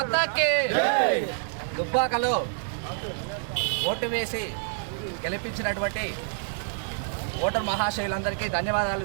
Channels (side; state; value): left; silent; digital silence